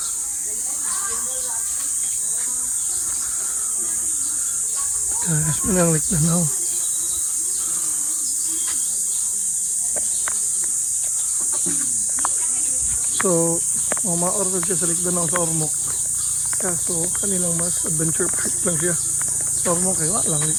Guys, mananglik na now. So, ma-order siya sa Likdanao sa Ormoc. Kaso, kanilang mas adventure park lang siya. Sa Ormoc, kaya lang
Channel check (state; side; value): identical; both; correlation 1.00